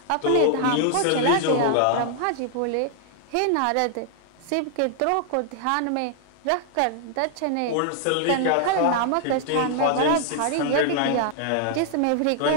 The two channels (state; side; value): different; both; correlation 0.00